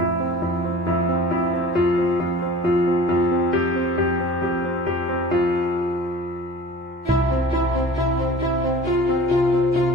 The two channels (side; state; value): both; normal; correlation 0.42